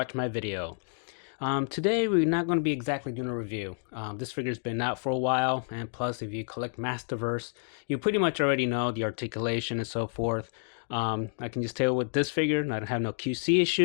my video. Today we're not going to be exactly doing a review. This figure's been out for a while, and plus if you collect Masterverse, you pretty much already know the articulation and so forth. I can just tell with this figure, I don't have no QC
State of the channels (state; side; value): silent; right; digital silence